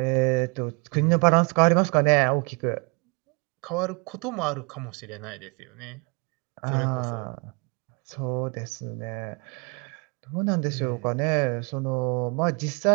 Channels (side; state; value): left; quieter; 32.8 dB